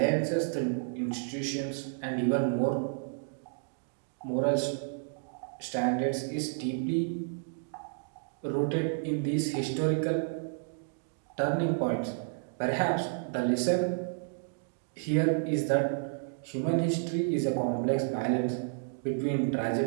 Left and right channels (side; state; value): left; silent; digital silence